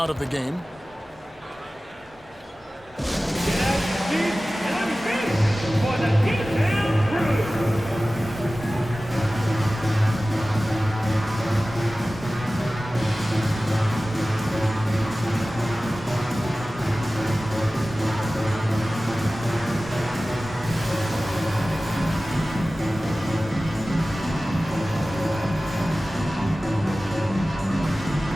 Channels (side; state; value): both; normal; correlation 0.96